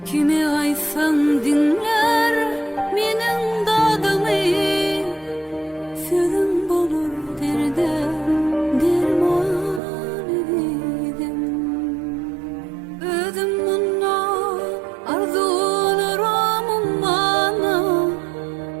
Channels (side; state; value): left; drops out; at 9.8 s